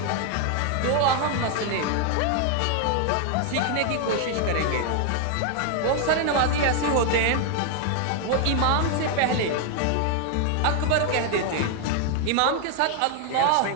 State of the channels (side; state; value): both; different; correlation 0.00